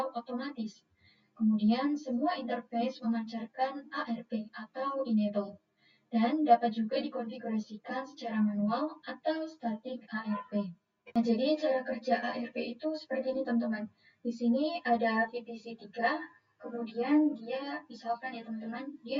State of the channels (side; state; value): both; identical; correlation 1.00